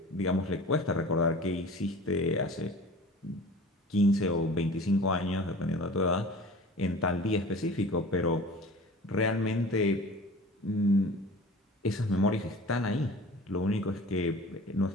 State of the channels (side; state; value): both; normal; correlation 0.40